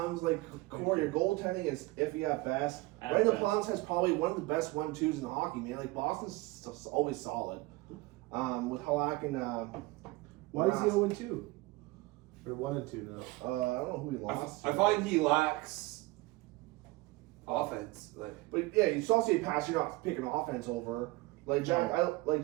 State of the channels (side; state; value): left; quieter; 21.4 dB